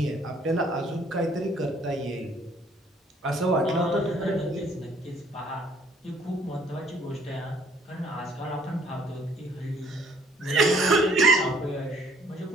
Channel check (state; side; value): normal; both; correlation 0.60